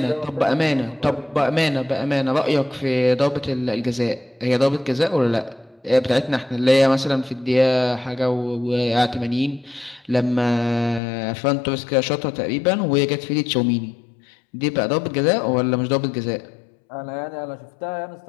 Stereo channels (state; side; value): drops out; right; at 11.0 s